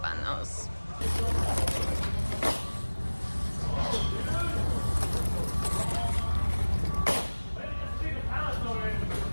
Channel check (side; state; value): both; inverted; correlation -1.00